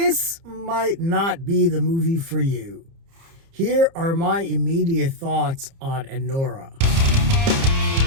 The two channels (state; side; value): late; left; 30 ms